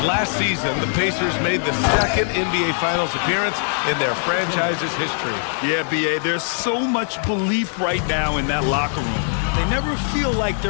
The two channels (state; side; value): silent; right; 58 dB below the other